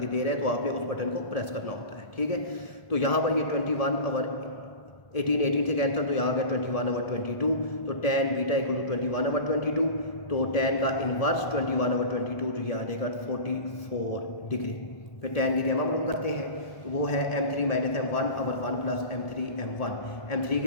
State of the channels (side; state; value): right; late; 1.2 ms